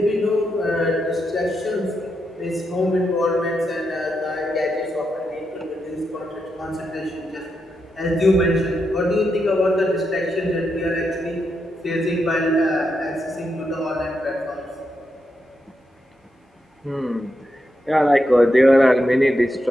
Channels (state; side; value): normal; both; correlation 0.84